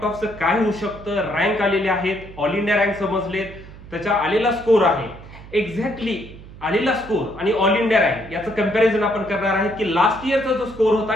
ऑफचं काय होऊ शकतं, रँक आलेले आहेत, ऑल इंडिया रँक समजलेत, त्याचा आलेला स्कोर आहे. एक्झॅक्टली आलेला स्कोर आणि ऑल इंडिया रँक याचं कंपॅरिझन आपण करणार आहे की लास्ट इयरचा जो स्कोर होता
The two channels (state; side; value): noise; right; hum, 17 dB below the sound